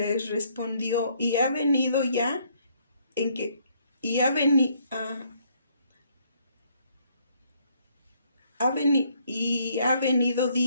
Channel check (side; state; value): both; inverted; correlation -0.67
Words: respondió, y ha venido ya en que, y ha venido, y ha venido